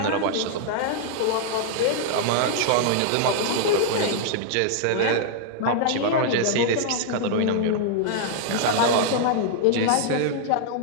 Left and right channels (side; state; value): both; different; correlation -0.01